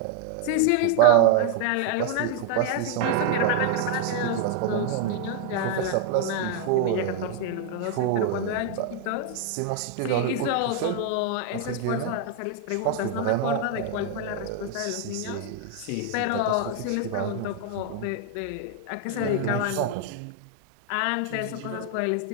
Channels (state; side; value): different; both; correlation 0.01